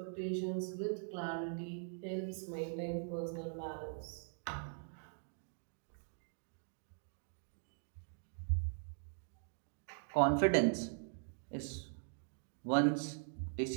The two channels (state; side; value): silent; left; digital silence